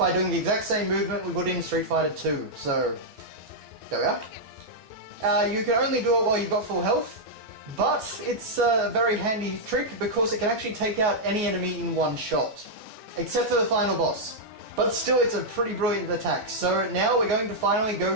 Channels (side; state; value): left; late; 14 ms